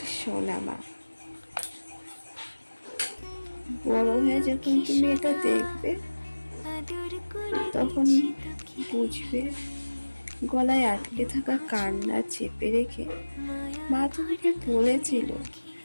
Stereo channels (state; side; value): inverted; both; correlation -1.00